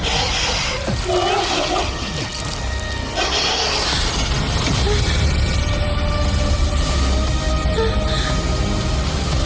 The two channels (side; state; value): both; identical; correlation 1.00